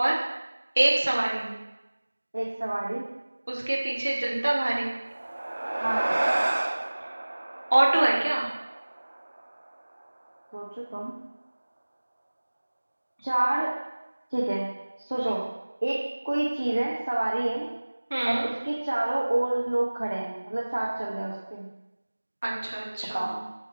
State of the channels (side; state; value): both; inverted; correlation -1.00